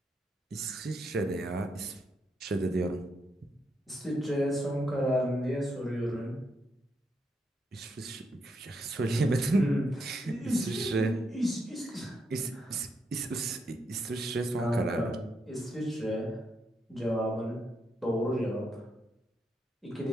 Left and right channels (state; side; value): normal; both; correlation 0.80